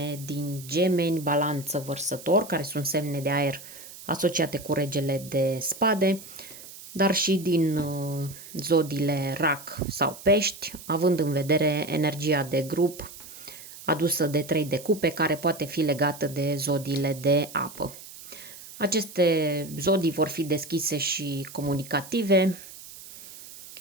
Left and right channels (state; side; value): noise; right; hiss, 16 dB below the sound